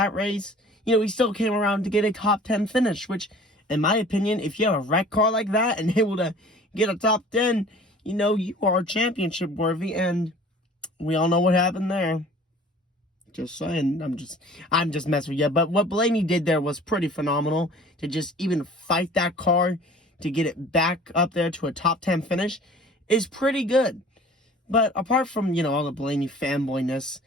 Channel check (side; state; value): both; normal; correlation 0.47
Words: race, you know, he still came around to get a top 10 finish, which, in my opinion, if you have a wreck car like that and able to get a top 10, you know, you are championship worthy, and we all know what happened there. Just saying, I'm just messing with you. But what Blaney did there was pretty phenomenal. To just even fight that car to get it back up there to a top 10 finish is pretty good. But apart from, you know, all the Blaney fanboyness,